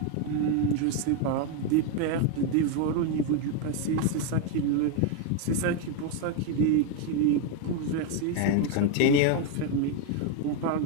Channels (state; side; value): different; both; correlation 0.01